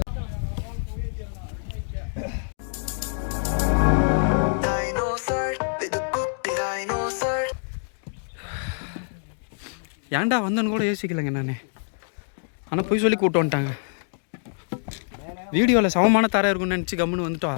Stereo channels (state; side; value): silent; right; digital silence